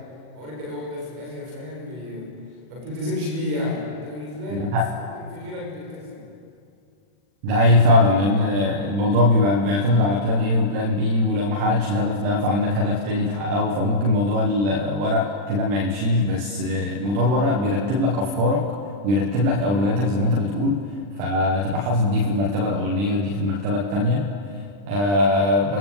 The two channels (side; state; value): left; late; 40 ms